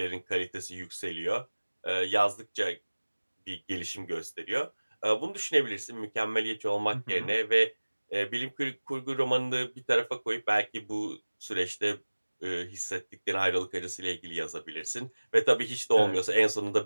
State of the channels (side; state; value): both; inverted; correlation -1.00